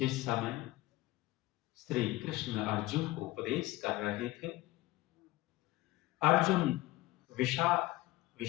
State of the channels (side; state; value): right; quieter; 18.8 dB